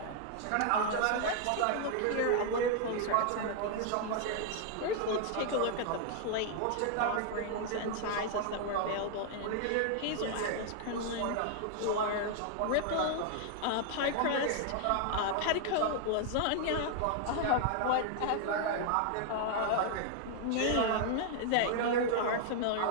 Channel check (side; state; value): both; different; correlation 0.00